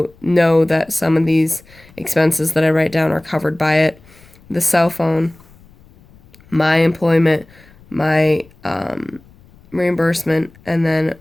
that some of these expenses that I write down are covered by it. The cell phone, my employment, my reimbursement, and then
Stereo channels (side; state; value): left; noise; rumble, 27 dB below the sound